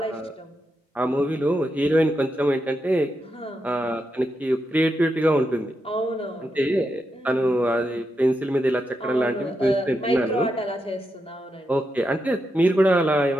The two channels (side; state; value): both; normal; correlation 0.85